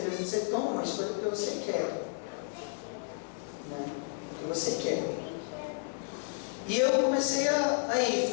vezes você toma uma escolha porque você quer. Né? Porque você quer. E eu comecei a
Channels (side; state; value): right; silent; 56 dB below the other